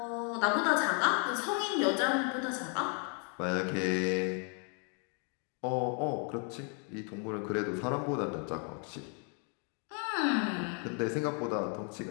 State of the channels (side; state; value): right; quieter; 39.8 dB